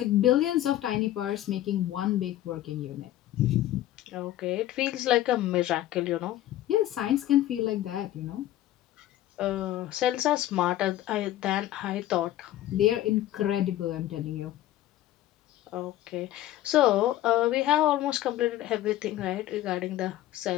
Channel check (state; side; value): quieter; right; 13.8 dB